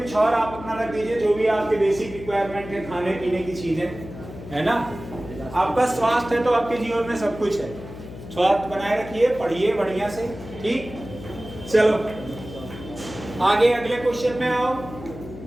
और आप अपना रख दीजिए, जो भी आपके बेसिक रिक्वायरमेंट है, खाने पीने की चीजें है ना। आपका स्वास्थ्य है तो आपके जीवन में सब कुछ है, स्वास्थ्य बनाए रखिए, पढ़िए बढ़िया से, ठीक। चलो आगे अगले क्वेश्चन में आओ,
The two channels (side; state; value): left; noise; hum, 13 dB below the sound